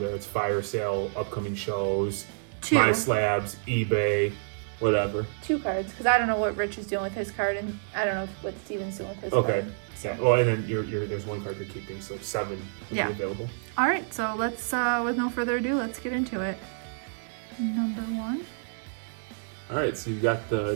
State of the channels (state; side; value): silent; left; 59 dB below the other